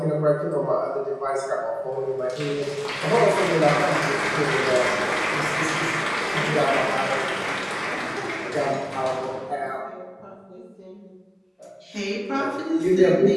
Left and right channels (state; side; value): identical; both; correlation 1.00